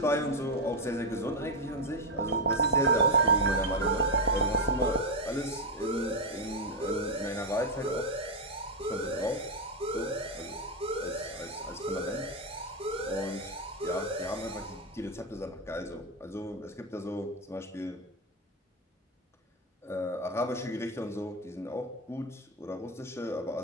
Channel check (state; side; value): normal; both; correlation 0.04